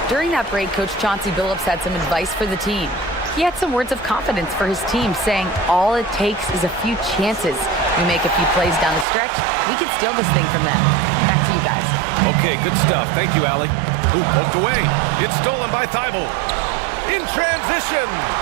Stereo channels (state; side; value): drops out; left; at 9.1 s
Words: During that break, Coach Chauncey Billups had some advice for the team. He had some words of confidence for his team, saying all it takes is a few chances. We make a few plays down the stretch, we can steal this thing from them. Back to you guys. Okay, good stuff. Thank you, Allie. Ooh, poked away. It's stolen by Thibault. In transition.